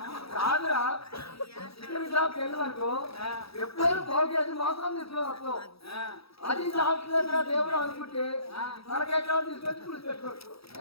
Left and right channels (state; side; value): late; right; 0.77 ms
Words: కాదురా చికెన్ షాప్కి వెళ్ళిననుకో ఎప్పుడైనా 1/2 కేజీ మాత్రం తీసుకున్నావు అది సాక్షిగా దేవుడు అనుకుంటే తలకాయ కాడు తీసుకొచ్చి పులుసు పెట్టుకోవచ్చు